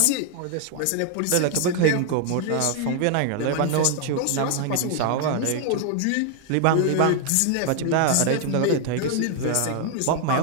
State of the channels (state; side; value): different; both; correlation 0.00